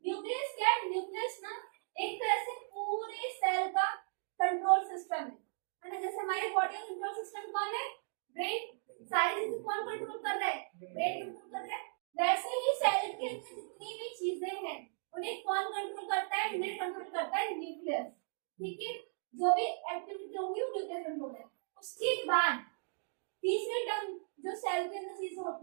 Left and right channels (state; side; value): silent; left; digital silence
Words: न्यूक्लियस क्या है? न्यूक्लियस ना एक तरह से पूरे सेल का कंट्रोल सिस्टम है ना। जैसे हमारे बॉडी का कंट्रोल सिस्टम कौन है? ब्रेन। सारी चीजें कौन कंट्रोल कर रहा है? ब्रेन कंट्रोल कर रहा है। वैसे ही सेल के अंदर जितनी भी चीजें हैं उन्हें कौन कंट्रोल करता है? इन्हें कंट्रोल करता है न्यूक्लियस, ठीक है। जो भी एक्टिविटी होगी वो न्यूक्लियस कंट्रोल है। उसके बाद तीसरी टर्म जो सेल के अंदर चीज